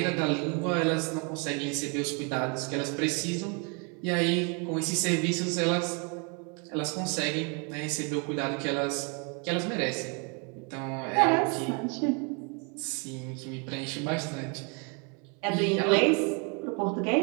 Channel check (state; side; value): quieter; left; 34.4 dB